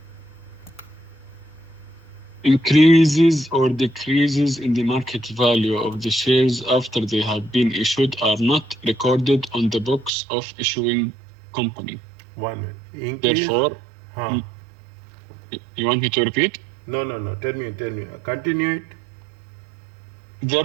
Increases or decreases in the market value of the shares after they have been issued are not recorded on the books of issuing company. One. Increase. Therefore, Huh. you want me to repeat? No. Tell me. Continue it.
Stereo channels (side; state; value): left; drops out; at 10.1 s